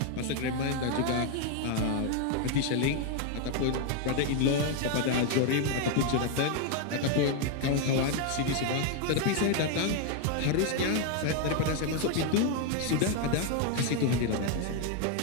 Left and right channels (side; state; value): both; different; correlation 0.01